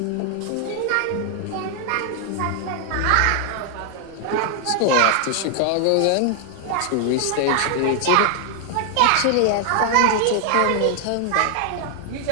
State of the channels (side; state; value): both; different; correlation 0.00